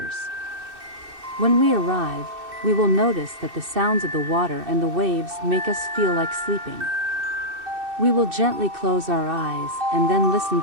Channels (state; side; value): late; left; 2.6 ms